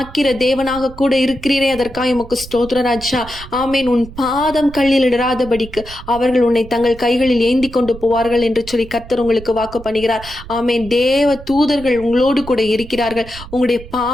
தேவனாக கூட இருக்கிறீரே, அதற்காக உமக்கு ஸ்தோத்திரம் ராஜா. ஆமேன். உன் பாதம் கல்லில் இடராதபடிக்கு அவர்கள் உன்னை தங்கள் கைகளில் ஏந்தி கொண்டு போவார்கள் என்று சொல்லி கர்த்தர் உங்களுக்கு வாக்கு பண்ணுகிறார். ஆமேன். தேவ தூதர்கள் உங்களோடு கூட இருக்கிறார்கள். உங்களுடைய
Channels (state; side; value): noise; right; rumble, 15 dB below the sound